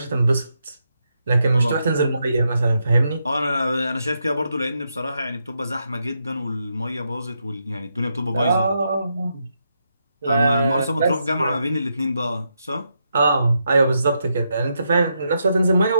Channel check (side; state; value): both; inverted; correlation -0.82